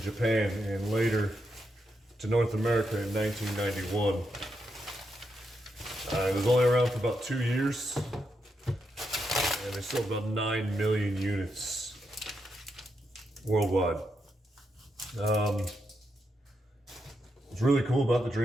Japan and later to North America in 1991. It was only around for about 2 years and they sold about 9 million units worldwide. What's really cool about the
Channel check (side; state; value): both; normal; correlation 0.83